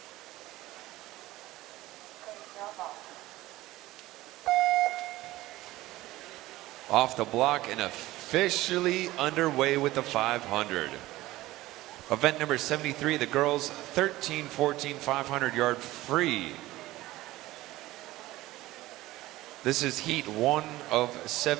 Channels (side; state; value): left; quieter; 17.3 dB